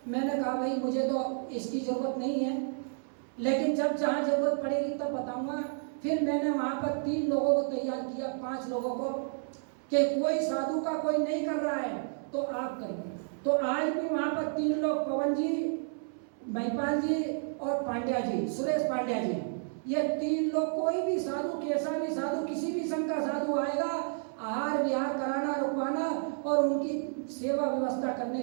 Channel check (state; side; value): silent; left; 57 dB below the other